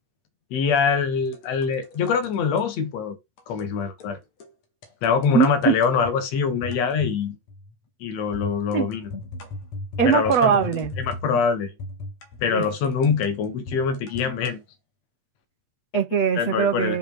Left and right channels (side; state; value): right; late; 8.4 ms